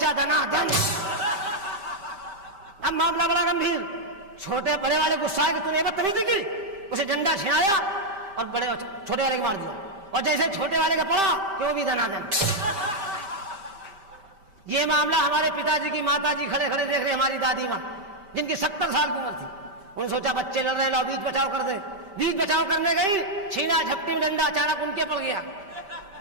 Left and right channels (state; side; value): late; left; 5.1 ms